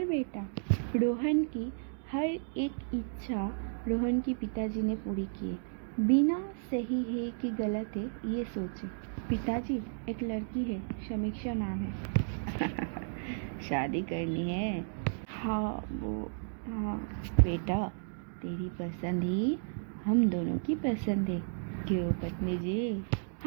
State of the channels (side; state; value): left; silent; digital silence